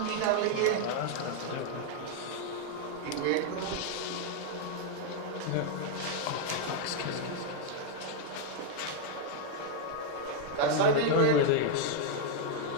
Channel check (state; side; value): different; both; correlation 0.00